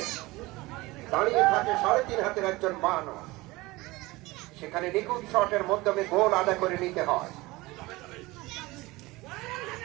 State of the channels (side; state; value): left; quieter; 21.1 dB